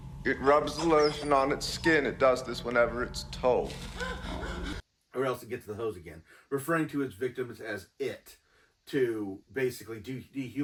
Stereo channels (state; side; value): identical; both; correlation 1.00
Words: It rubs the lotion on its skin. It does this whenever it's told. Or else it gets the hose again, referring to its victims as it, to basically